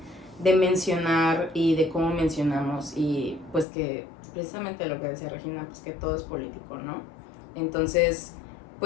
mencionar y de cómo mencionamos y pues que precisamente lo que decía Regina, pues que todo es político, ¿no? Entonces,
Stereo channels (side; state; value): right; drops out; at 3.7 s